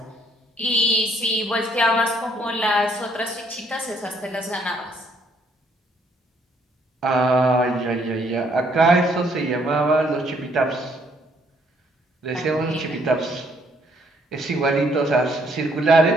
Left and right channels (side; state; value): both; normal; correlation 0.67